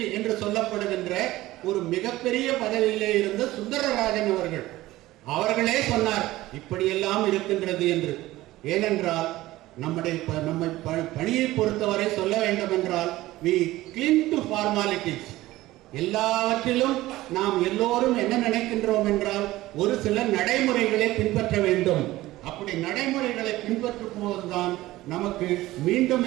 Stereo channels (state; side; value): quieter; left; 17.1 dB